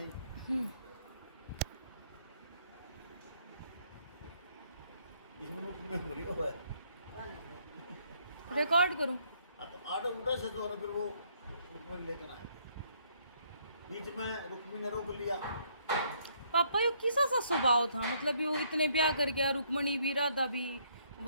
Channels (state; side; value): inverted; both; correlation -0.68